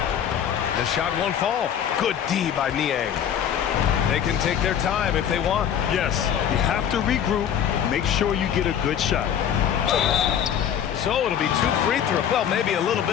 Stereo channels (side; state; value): right; quieter; 9.1 dB